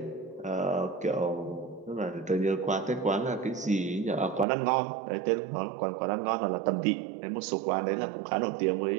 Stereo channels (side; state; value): left; drops out; at 4.5 s